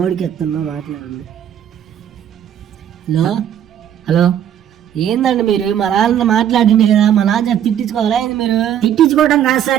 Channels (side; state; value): left; quieter; 10.0 dB